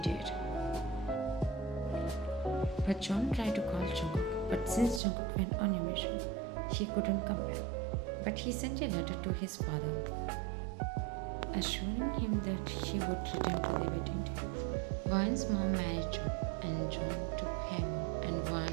date. But John tried to call Jungkook, but since Jungkook went on a mission, he couldn't come back. But he sent a letter to his father, assuring him that he would return to the wedding day. Vaughn's mom married John, and John took him and Vaughn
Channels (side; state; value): left; drops out; at 5.0 s